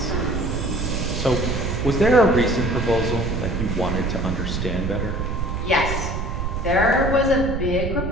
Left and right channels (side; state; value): right; noise; rumble, 3 dB below the sound